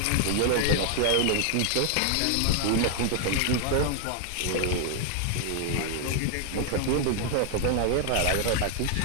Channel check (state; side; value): different; both; correlation 0.00